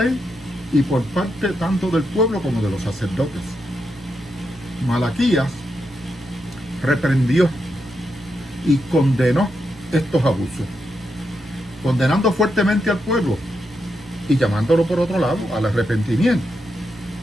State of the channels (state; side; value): normal; both; correlation 0.84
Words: y por parte tanto del pueblo como de los sacerdotes. Malaquías reprendió y condenó estos abusos, condenando fuertemente al pueblo y llamándolo por otro lado al arrepentimiento.